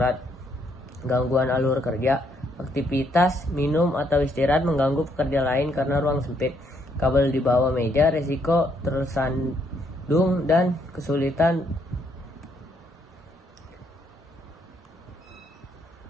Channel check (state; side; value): normal; both; correlation 0.72